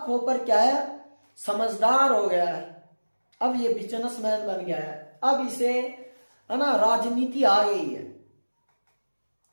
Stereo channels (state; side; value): inverted; both; correlation -1.00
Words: कॉपर क्या है, समझदार हो गया है, अब ये बिजनेसमैन बन गया है। अब इसे है ना, राजनीति आ गई है